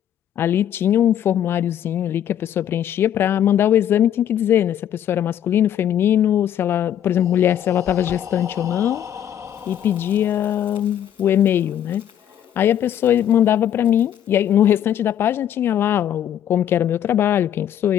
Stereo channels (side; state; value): right; quieter; 10.3 dB